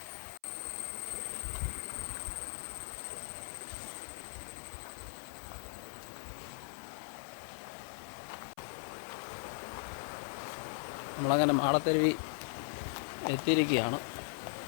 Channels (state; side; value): silent; right; 52 dB below the other